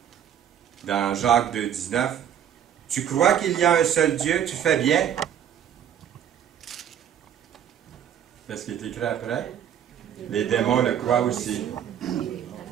Dans Jacques 2, 19, « Tu crois qu'il y a un seul Dieu, tu fais bien. » Qu'est-ce qui est écrit après? Les démons le croient aussi.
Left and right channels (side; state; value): left; quieter; 9.5 dB